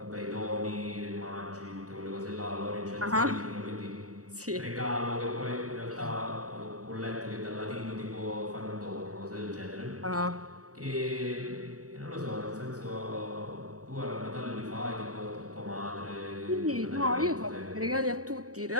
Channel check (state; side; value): late; left; 0.66 ms